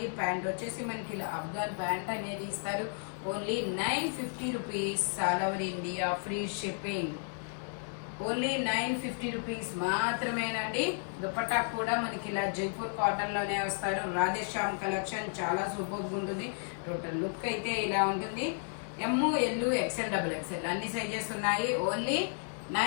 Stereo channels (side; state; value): right; silent; 56 dB below the other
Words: ప్యాంట్ వచ్చేసి మనకి ఇలా అఫ్ఘన్ ప్యాంట్ అనేది ఇస్తారు. Only 950 rupees, all over India free shipping. Only 950 rupees మాత్రమేనండి. దుపట్టా కూడా మనకి ఇలా జైపూర్ కాటన్ లోనే వస్తారు. రాధేశ్యామ్ కలెక్షన్ చాలా సూపర్ ఉంటుంది. టోటల్ లుక్ అయితే ఇలా ఉంటుంది. ఎమ్, ఎల్, XL, XXL అన్ని సైజెస్ ఉన్నాయి. Only